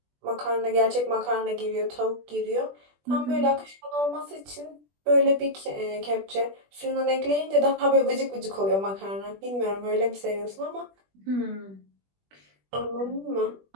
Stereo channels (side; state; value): left; late; 20 ms